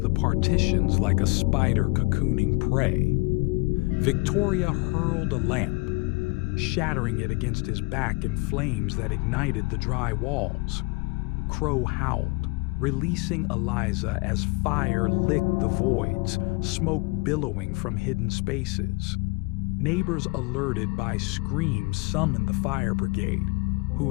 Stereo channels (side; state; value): right; quieter; 26.9 dB